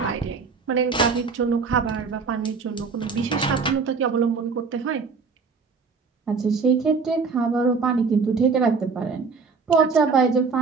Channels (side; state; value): left; quieter; 5.0 dB